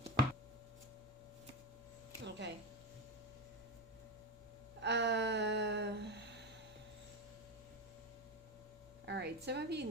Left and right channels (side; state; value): both; normal; correlation 0.16